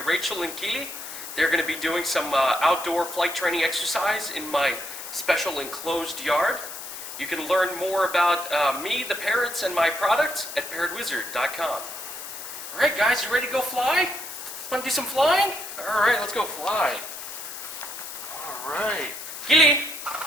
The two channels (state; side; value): noise; left; hiss, 10 dB below the sound